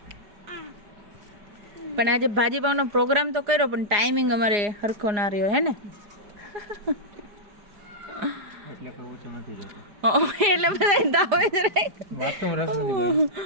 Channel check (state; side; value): late; left; 5.0 ms